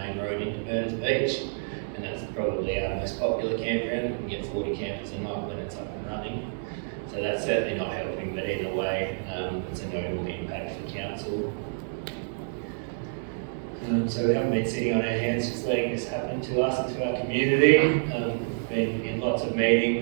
road into Burners Beach, and that's probably our most popular campground. We can get 40 campers a night when it's up and running. So that's certainly not helping, but either way, it's a notable impact for council. So we haven't been sitting on our hands just letting this happen to us and to our community. Been in lots of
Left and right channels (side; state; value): left; silent; digital silence